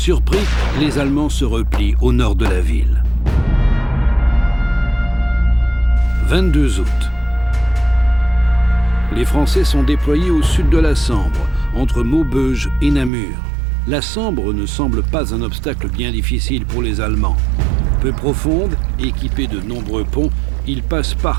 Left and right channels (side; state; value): left; drops out; at 13.1 s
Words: les Allemands se replient au nord de la ville. 22 août. Les Français sont déployés au sud de la Sambre, entre Maubeuge et Namur. La Sambre ne semble pas un obstacle bien difficile pour les Allemands. Peu profonde, équipée de nombreux ponts, ils passent